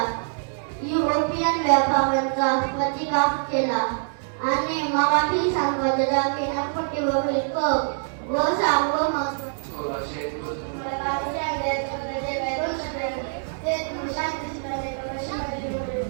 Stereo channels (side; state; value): left; silent; 62 dB below the other